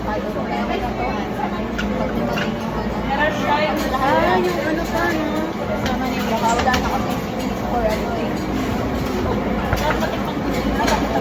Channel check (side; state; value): both; identical; correlation 1.00